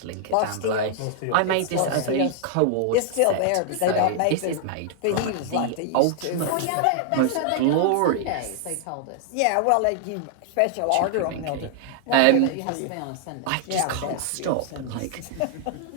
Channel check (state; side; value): different; both; correlation 0.00